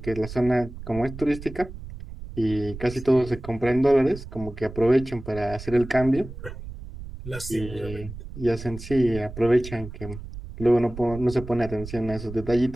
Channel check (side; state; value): right; noise; rumble, 12 dB below the sound